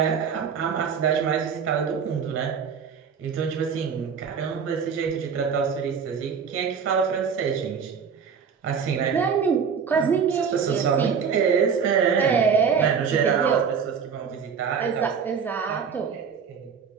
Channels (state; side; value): quieter; left; 6.5 dB